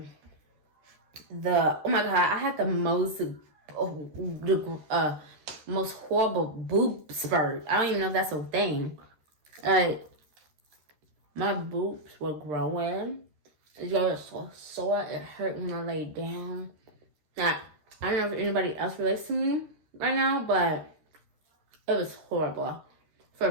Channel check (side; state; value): left; late; 13 ms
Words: Oh my god, I had the most horrible boob spurt. I don't even know if that's a thing. Like, my boobs were growing. It was so sore. It hurt when I laid down. Now, I don't know if anybody else relates to me right now, but it was horrible for